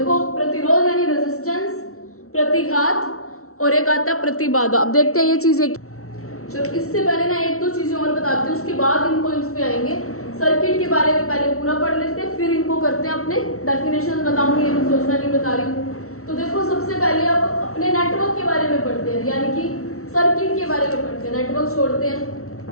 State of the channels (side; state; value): right; late; 0.63 ms